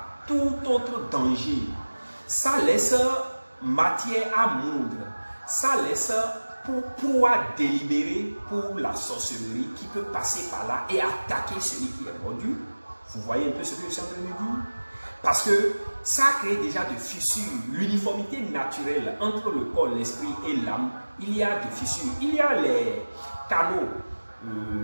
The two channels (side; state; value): both; inverted; correlation -1.00